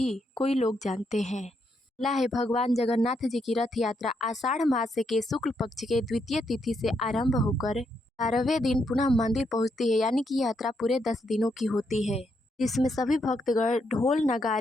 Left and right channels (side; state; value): both; normal; correlation 0.78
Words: कोई लोग जानते हैं। पहला है, भगवान जगन्नाथ जी की रथ यात्रा आषाढ़ मास के शुक्ल पक्ष के द्वितीय तिथि से आरंभ होकर 12वें दिन पुनः मंदिर पहुंचती है। यानी कि यात्रा पूरे 10 दिनों की होती है, जिसमें सभी भक्तगण ढोल